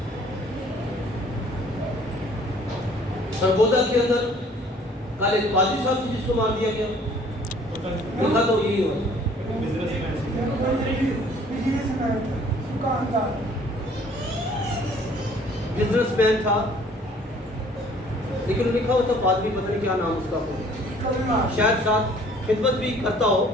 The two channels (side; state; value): both; normal; correlation 0.56